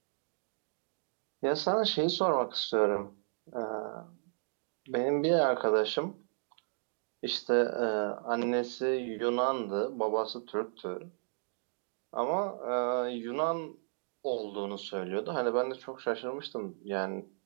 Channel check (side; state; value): left; silent; digital silence